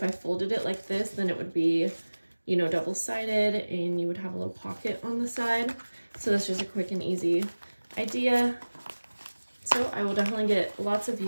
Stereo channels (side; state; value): both; inverted; correlation -1.00